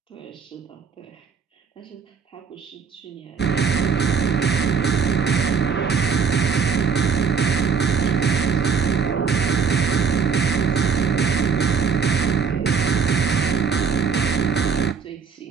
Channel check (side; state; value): left; quieter; 6.0 dB